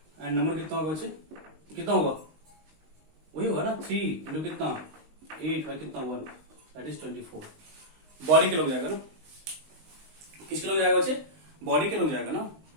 एंड नंबर कितना होगा बच्चे, कितना होगा वही होगा ना 3 इंटू कितना 8 बाय कितना 1, दैट इज 24। बॉडी के लोग जाएगा ना, किसके लोग जाएगा बच्चे, बॉडी के लोग जाएगा ना,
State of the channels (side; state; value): left; late; 19 ms